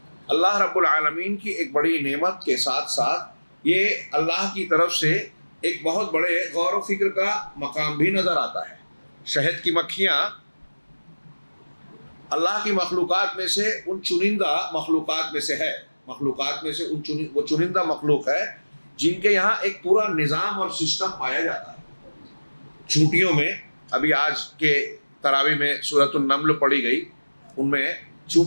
اللہ رب العالمین کی ایک بڑی نعمت کے ساتھ ساتھ یہ اللہ کی طرف سے ایک بہت بڑے غور و فکر کا مقام بھی نظر آتا ہے. شہد کی مکھیاں اللہ کی مخلوقات میں سے ان چنندہ مخلوقات میں سے ہے. مخلوقات میں سے وہ چنندہ مخلوق ہے جن کے یہاں ایک پورا نظام اور سسٹم پایا جاتا ہے. چونٹیوں میں ابھی آج کے تراویح میں سورۃ النمل پڑھی گئی، ان میں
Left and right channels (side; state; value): both; inverted; correlation -1.00